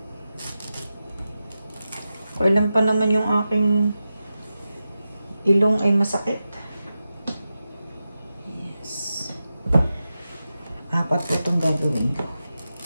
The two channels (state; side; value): inverted; both; correlation -0.91